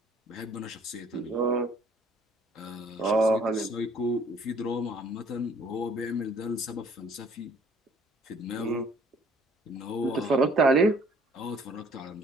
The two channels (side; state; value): both; normal; correlation 0.58